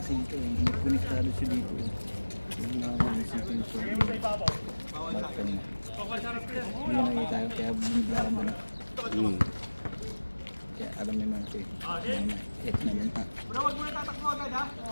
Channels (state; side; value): inverted; both; correlation -1.00